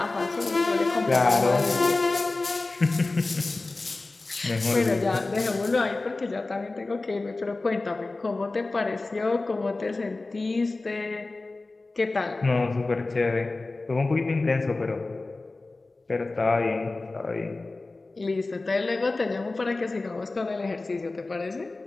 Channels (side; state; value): right; quieter; 3.3 dB